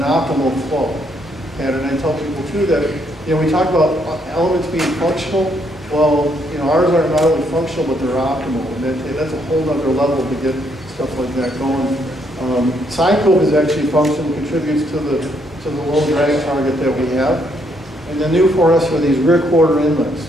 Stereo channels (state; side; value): normal; both; correlation 0.72